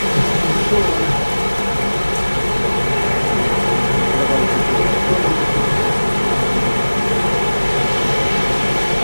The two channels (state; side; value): inverted; both; correlation -1.00